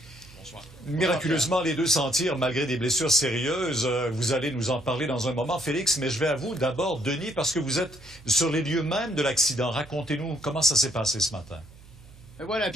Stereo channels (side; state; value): right; noise; hum, 22 dB below the sound